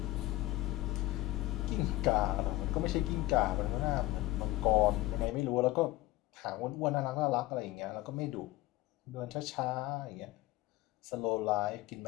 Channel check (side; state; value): right; quieter; 18.1 dB